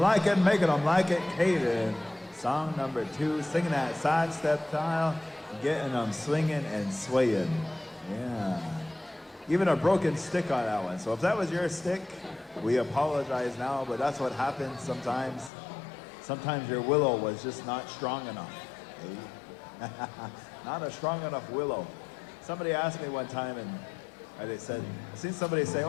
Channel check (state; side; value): drops out; right; at 15.5 s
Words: them like it, Caden. Song number 2, singing that sidestep style, getting them swinging and swaying. Yeah. Even a broken stick on that one. So if that was your stick, we apologize now, but that's what happens sometimes. Sometimes your willow was just not strong enough. Not a strong enough willow. Somebody asked me one time, and they said, I seen somebody say,